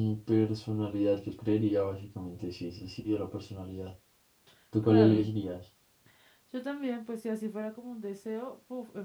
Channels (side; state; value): both; identical; correlation 1.00